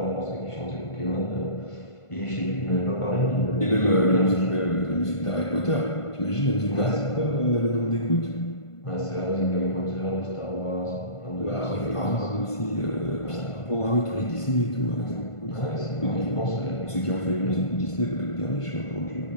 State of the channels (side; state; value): right; late; 1.5 ms